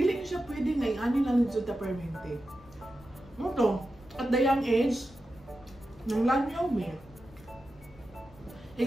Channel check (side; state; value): left; noise; rumble, 23 dB below the sound